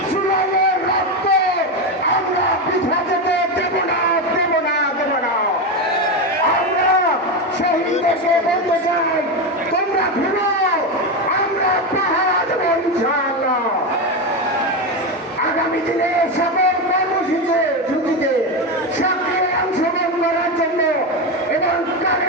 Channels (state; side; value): normal; both; correlation 0.13